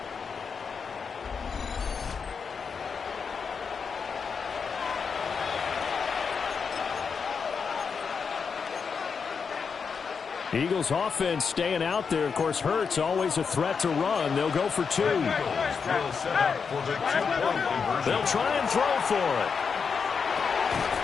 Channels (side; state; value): right; quieter; 5.8 dB